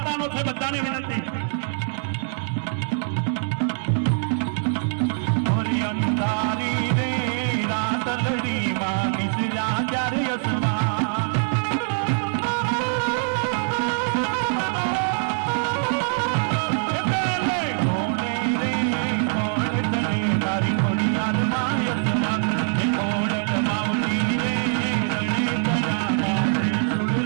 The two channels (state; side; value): silent; left; 63 dB below the other